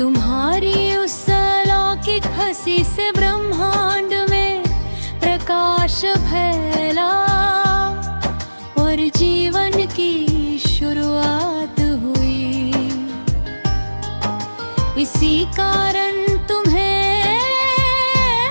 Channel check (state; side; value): inverted; both; correlation -1.00